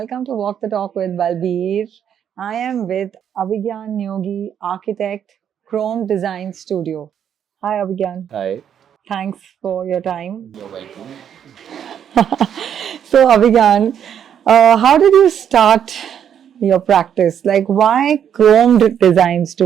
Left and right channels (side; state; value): left; quieter; 8.9 dB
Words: to Walk the Talk with Balbir. I am with Abhigyan Neogi, architect, Chrome Design Studio. Hi, Abhigyan. Hi, Thanks for your time. you're welcome. So, Abhigyan, how did you start your practice? Like, why Chrome Design